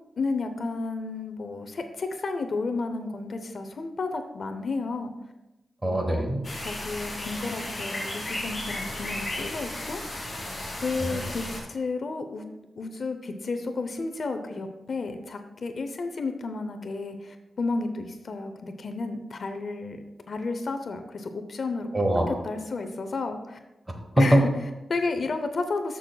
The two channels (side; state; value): both; normal; correlation 0.90